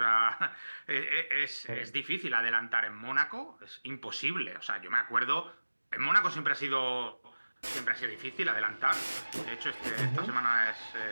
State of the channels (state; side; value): inverted; both; correlation -1.00